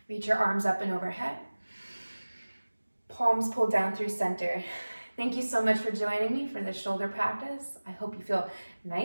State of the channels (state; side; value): inverted; both; correlation -1.00